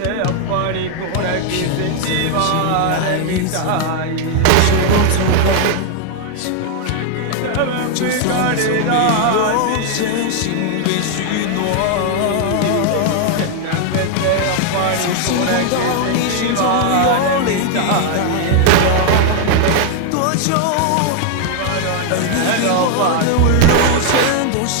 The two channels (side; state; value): both; different; correlation 0.00